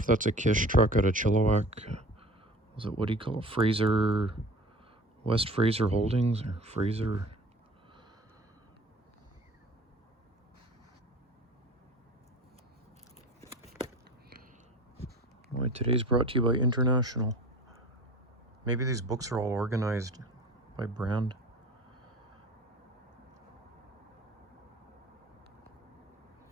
that's a Kish truck out of Chilliwack. Was it, what do you call it? Fraser, West Fraser Holdings, or Fraser? Boy, today's brought to you by International. Maybe these books are all organized by brand.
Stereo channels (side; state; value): both; normal; correlation 0.41